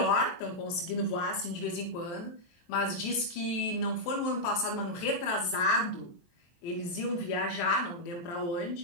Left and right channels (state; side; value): late; right; 23 ms